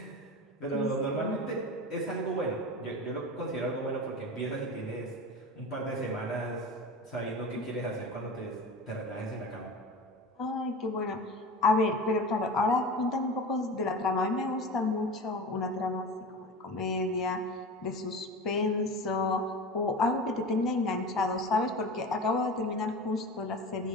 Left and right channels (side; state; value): both; normal; correlation 0.31